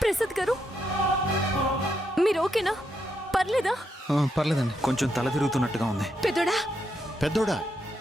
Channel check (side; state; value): both; normal; correlation 0.80